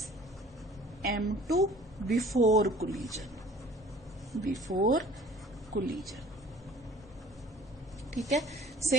M2 before collision, ठीक है।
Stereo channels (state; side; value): normal; both; correlation 0.49